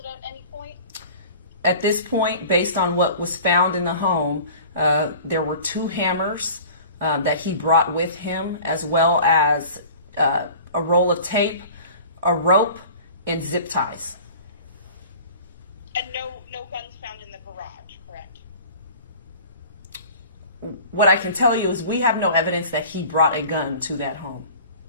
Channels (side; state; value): both; inverted; correlation -0.43